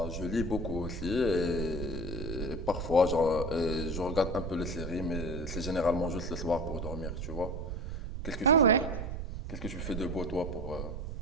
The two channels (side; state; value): right; noise; rumble, 5 dB below the sound